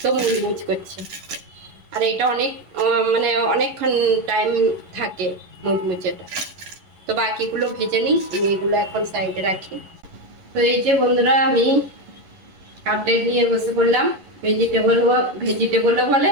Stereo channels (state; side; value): late; left; 11 ms